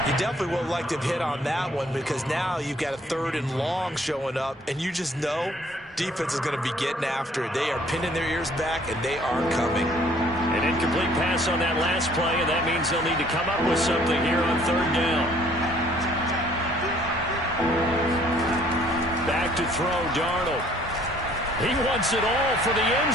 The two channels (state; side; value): normal; both; correlation 0.59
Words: You definitely would like to have hit on that one, because now you've got a 3rd and long showing up, and you just know defense is going to be getting after it. They are pinning their ears back, and they are coming. An incomplete pass on that last play, and that means they'll need to come up with something here on 3rd down. Back to throw, Darnold. He wants it all for the end